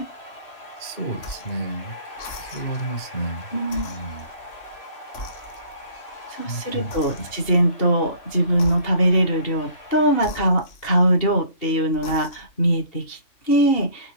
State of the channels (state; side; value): late; right; 2.8 ms